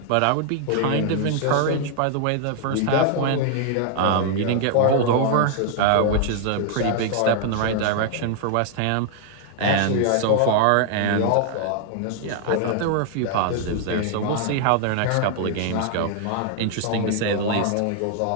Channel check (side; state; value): both; different; correlation 0.00